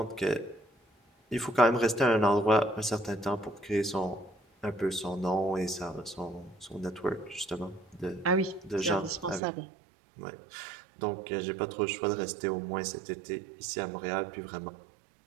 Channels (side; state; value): left; drops out; at 9.4 s